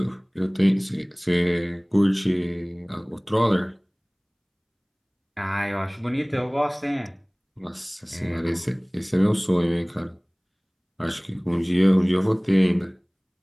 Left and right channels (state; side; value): identical; both; correlation 1.00